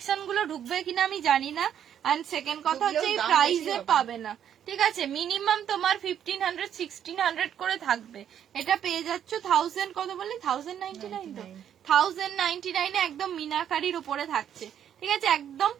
গুলো ঢুকবে কিনা আমি জানি না, আর সেকেন্ড কথা হচ্ছে এই প্রাইসে পাবে না, ঠিক আছে, মিনিমাম তোমার 1500 1600 করে থাকবে। এটা পেয়ে যাচ্ছ 1000, কত বললি? 1099 তো, 1099 এ একদম মিনাকারির উপরে থাকছে, ঠিক আছে, একদম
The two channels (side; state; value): left; quieter; 9.5 dB